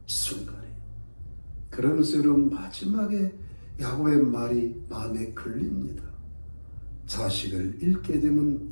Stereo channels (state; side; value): inverted; both; correlation -1.00